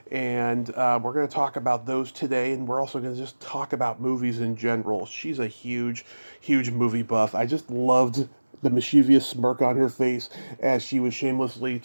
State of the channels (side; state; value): both; inverted; correlation -1.00